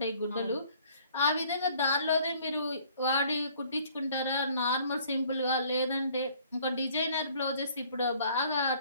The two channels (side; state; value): both; inverted; correlation -0.57